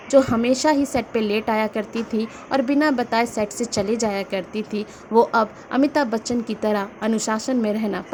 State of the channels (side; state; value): both; identical; correlation 1.00